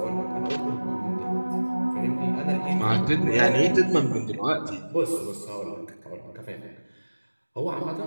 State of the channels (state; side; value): inverted; both; correlation -1.00